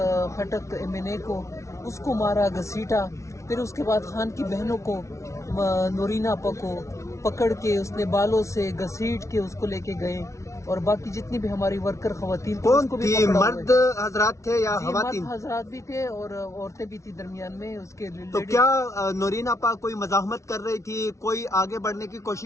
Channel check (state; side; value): late; right; 0.14 ms